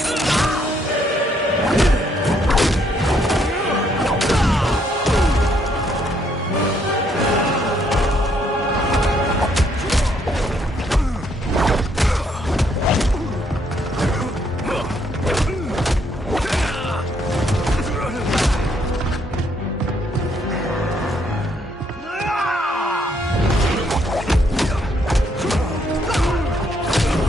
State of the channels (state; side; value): normal; both; correlation 0.71